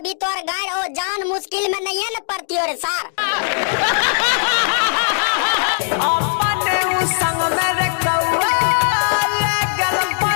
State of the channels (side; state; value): right; silent; digital silence